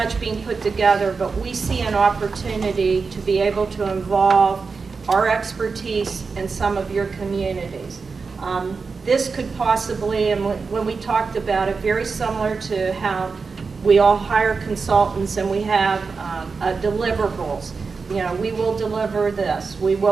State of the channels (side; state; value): left; quieter; 4.8 dB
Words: being put together, but we see an opportunity to be able to involve our expertise in some of your communities. This could possibly, and when we talked about it, very similar to how we all hire consultants and we have deliverables. You know, we will deliver this. We